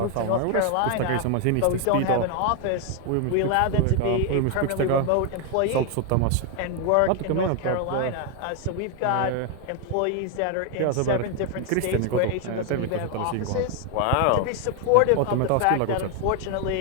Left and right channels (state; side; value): different; both; correlation 0.01